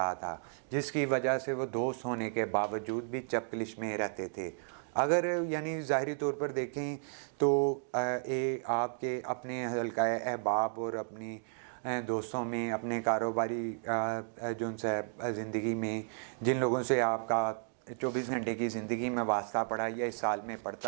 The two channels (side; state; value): left; silent; digital silence